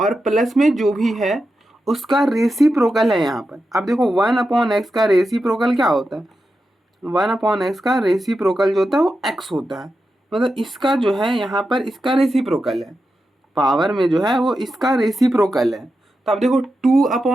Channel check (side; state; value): both; normal; correlation 0.89